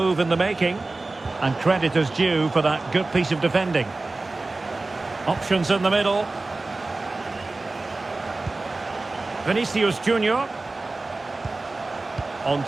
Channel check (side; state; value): left; quieter; 3.3 dB